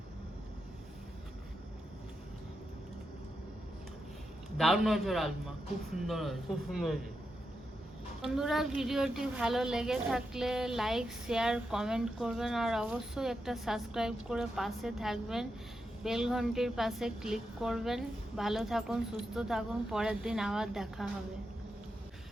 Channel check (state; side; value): normal; both; correlation 0.86